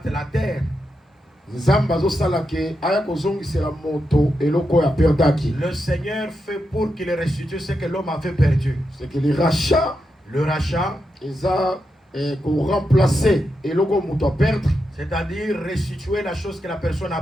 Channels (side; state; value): both; normal; correlation 0.86